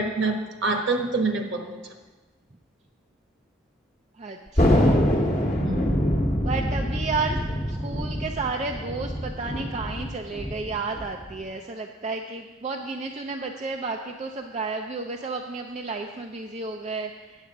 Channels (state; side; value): normal; both; correlation 0.60